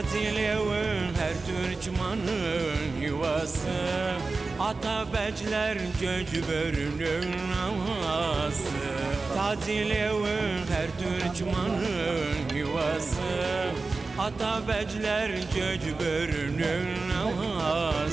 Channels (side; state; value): left; quieter; 3.9 dB